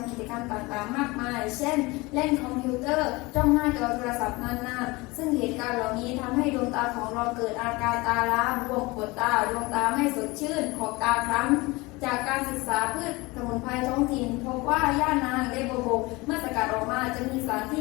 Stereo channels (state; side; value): quieter; right; 23.3 dB